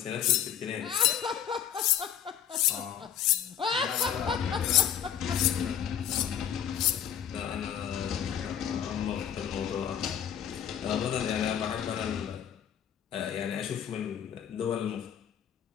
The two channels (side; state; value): right; quieter; 9.3 dB